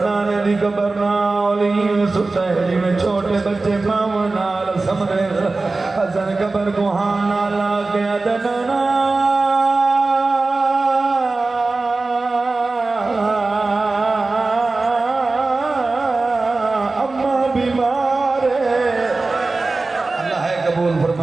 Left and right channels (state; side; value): quieter; left; 3.5 dB